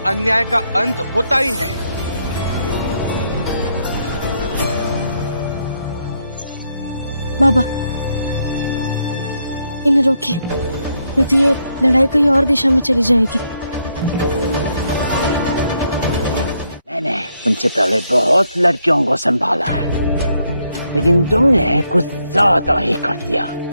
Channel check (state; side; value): inverted; both; correlation -0.77